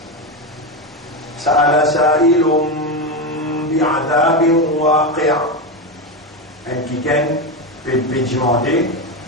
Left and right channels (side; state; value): both; normal; correlation 0.14